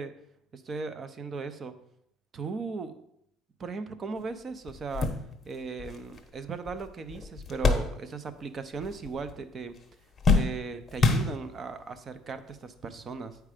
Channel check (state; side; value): normal; both; correlation 0.63